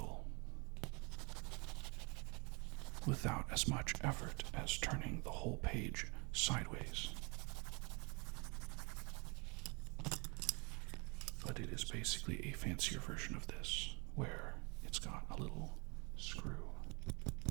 without as much effort as turning the whole page sideways. But it is basically a fancier version of this, where it's got a little screw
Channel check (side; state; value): left; quieter; 30.5 dB